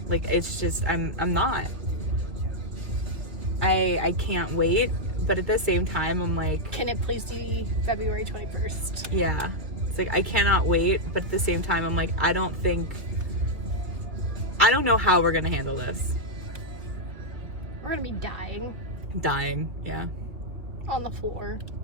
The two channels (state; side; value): late; left; 2.7 ms